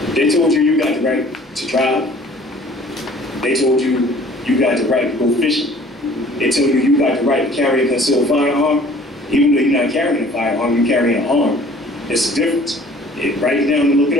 They told you got the right to drive. They told you got the right to go fishing. They told you got the right to carry a concealed firearm. Even though you're not carrying a firearm, you're carrying an arm. It's a difference. Write it down and look it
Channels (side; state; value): both; normal; correlation 0.51